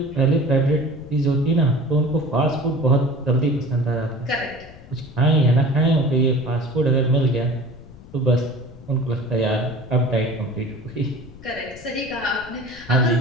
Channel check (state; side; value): noise; left; rumble, 19 dB below the sound